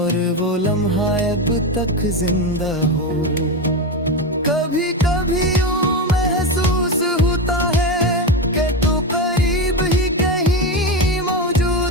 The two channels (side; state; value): both; normal; correlation 0.16